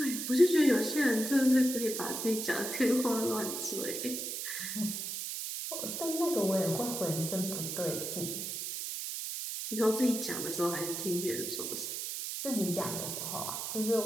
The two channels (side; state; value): right; noise; hiss, 4 dB below the sound